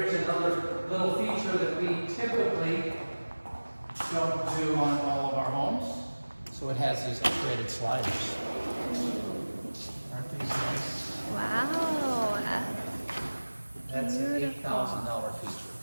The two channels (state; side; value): inverted; both; correlation -1.00